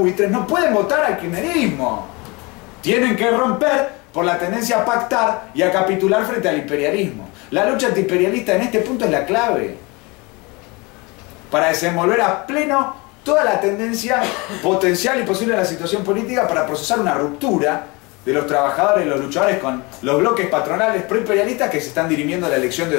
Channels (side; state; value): right; quieter; 26.4 dB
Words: no pueden votar al kirchnerismo. Tienen que romper por la tendencia a pactar y a capitular frente al imperialismo. La lucha antiimperialista en este punto es la clave para desenvolver a pleno toda la tendencia potencial y posible de la situación política para procesar una ruptura de los trabajadores y los luchadores con los bloques patronales proimperialistas que se están dirimiendo a la elección de